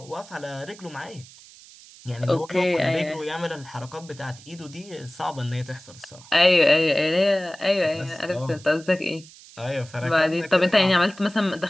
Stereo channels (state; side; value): noise; right; hiss, 21 dB below the sound